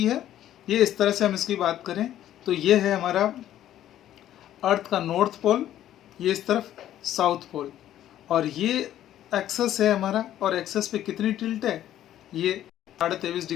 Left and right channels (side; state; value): right; quieter; 12.1 dB